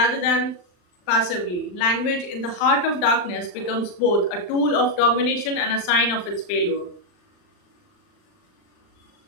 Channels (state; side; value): late; right; 39 ms